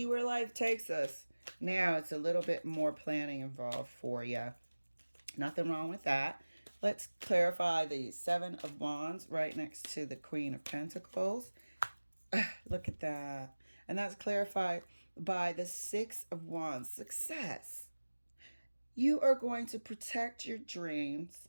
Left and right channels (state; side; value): inverted; both; correlation -1.00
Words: where life takes us. Now it's a little bit more planning involved for you. Nothing wrong with that. Let's clarify the Seven of Wands right next to the Queen of Pentacles. Look at that. And that's clarified by the Six of Wands, success. You are going to protect your dreams.